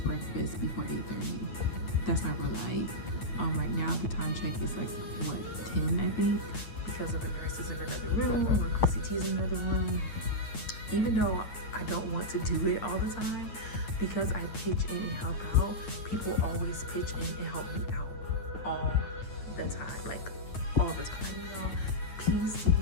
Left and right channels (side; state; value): right; late; 9.3 ms